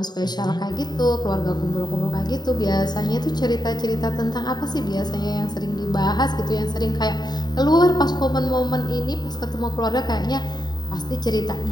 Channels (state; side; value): late; right; 0.20 ms